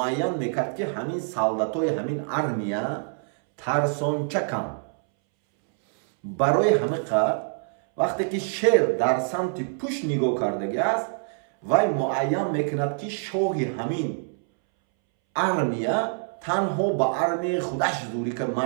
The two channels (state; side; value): silent; left; 61 dB below the other